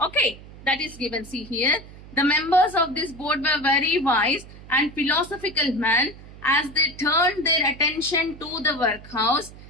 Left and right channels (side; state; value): right; noise; hum, 18 dB below the sound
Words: Okay, that is given. See here, the members of this board were very wise and philosophical men. As they turned their attention to the workhouse,